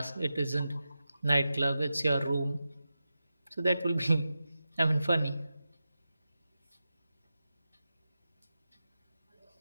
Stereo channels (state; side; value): inverted; both; correlation -0.92